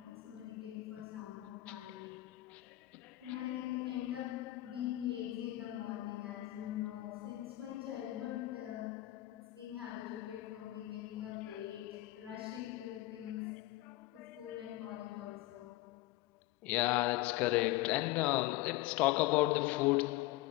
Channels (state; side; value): quieter; right; 17.4 dB